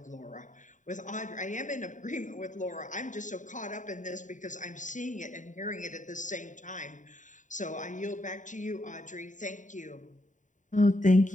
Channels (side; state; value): right; late; 0.36 ms